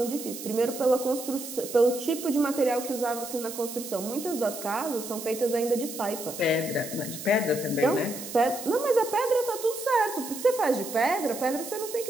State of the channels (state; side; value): noise; right; hiss, 10 dB below the sound